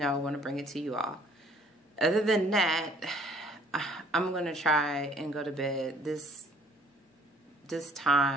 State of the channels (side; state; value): both; normal; correlation 0.58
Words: I want to bring it to you all. Other than that, I'm going to try and go to bed. This